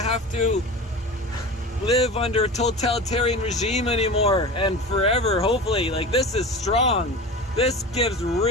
to live under a totalitarian regime anymore and forever, hopefully. Like, this is strong. This gives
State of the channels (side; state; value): both; normal; correlation 0.32